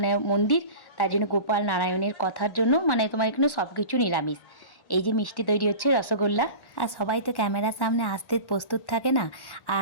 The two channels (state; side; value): late; right; 1.1 ms